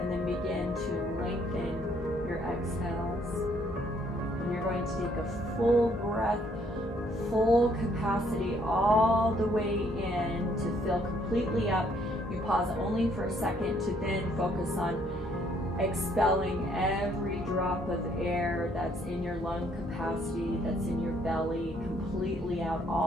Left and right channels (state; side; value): normal; both; correlation 0.66